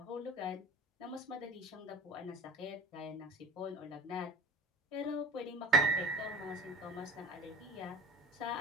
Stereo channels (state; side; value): normal; both; correlation 0.37